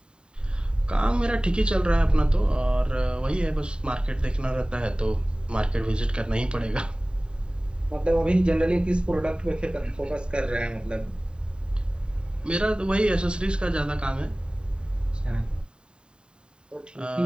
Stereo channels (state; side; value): late; left; 0.049 ms